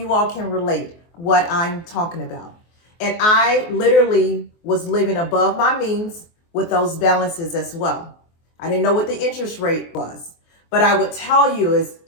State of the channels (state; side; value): late; right; 24 ms